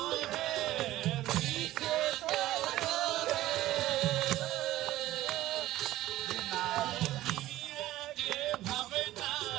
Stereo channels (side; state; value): left; quieter; 15.5 dB